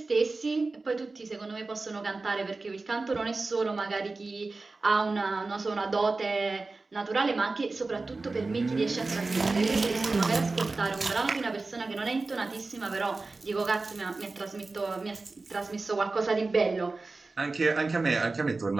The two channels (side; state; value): left; quieter; 3.6 dB